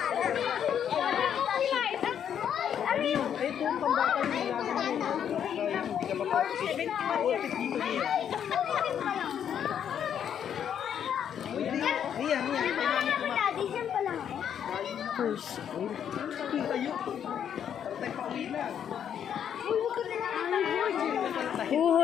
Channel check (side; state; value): right; quieter; 8.9 dB